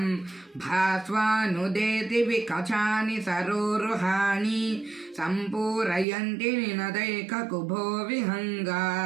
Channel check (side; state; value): left; drops out; at 6.1 s